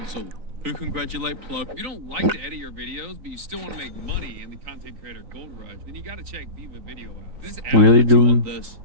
who congratulate Plo. If you don't like to edit your videos, but you still want to make money in the content creator gold rush, then you got to check Viva Video out. This app Really, with you on dude? this,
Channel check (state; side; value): late; left; 3.9 ms